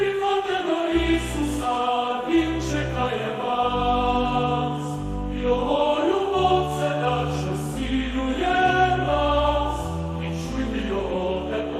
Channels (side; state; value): both; identical; correlation 1.00